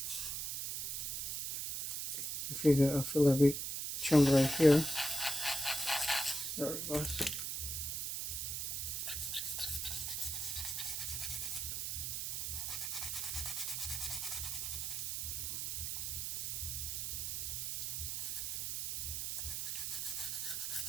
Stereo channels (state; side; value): noise; right; hiss, 2 dB below the sound